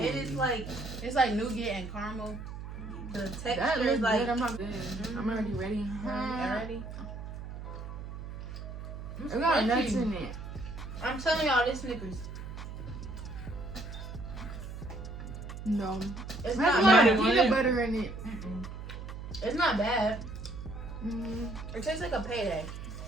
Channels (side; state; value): right; noise; hum, 9 dB below the sound